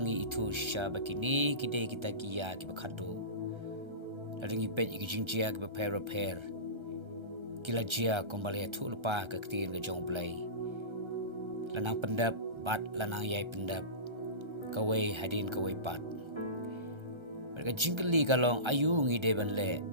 Ithuh shisha bakini kide kita kia ki bakhadu. Ladingi pet iki jingjia ki repair. Kila jia kembali Ithuh lupa ke ketin ke jong blai. Lanang pendap bat lanang yai pendap. Kawai hadin kawai pat. Mereka jingkeli kalong ayu ngi deban le.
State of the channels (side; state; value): left; late; 1.3 ms